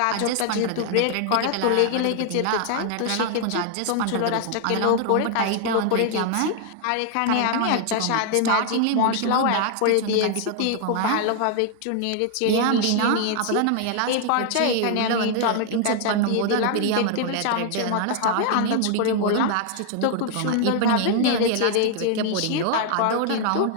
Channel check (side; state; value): both; different; correlation 0.00